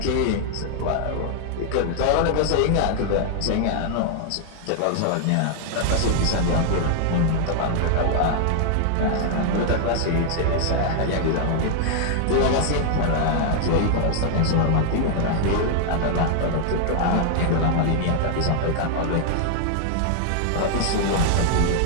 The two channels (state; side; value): different; both; correlation 0.00